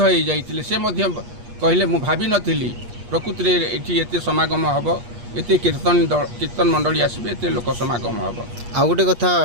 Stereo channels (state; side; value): late; left; 8.4 ms